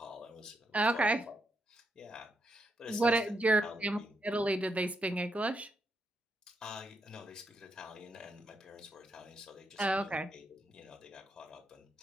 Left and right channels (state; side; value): normal; both; correlation 0.80